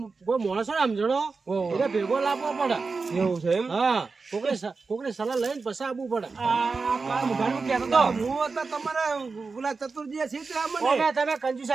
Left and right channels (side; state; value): left; quieter; 4.4 dB